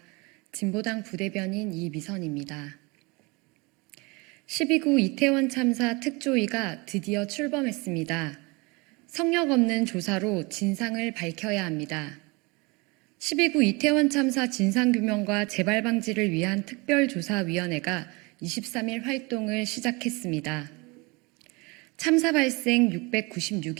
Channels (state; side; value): quieter; left; 26.7 dB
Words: 진보당 부대변인 이미선입니다. 12구 이태원 참사 특조위가 드디어 출범했습니다. 성역 없는 조사로 진상을 밝혀야 합니다. 12구 이태원 참사 진상규명과 재발 방지를 위한 특별조사위원회가 23일 활동을 시작했습니다. 참사 발생